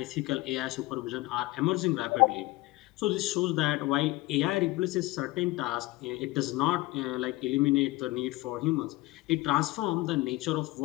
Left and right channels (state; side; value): quieter; right; 20.1 dB